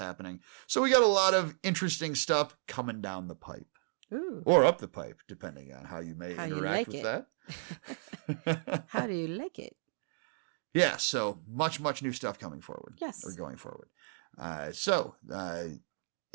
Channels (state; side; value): silent; left; digital silence